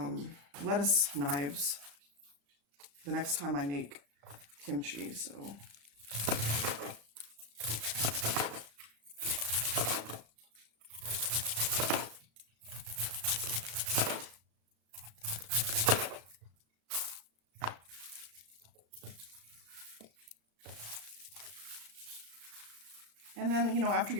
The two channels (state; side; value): late; left; 35 ms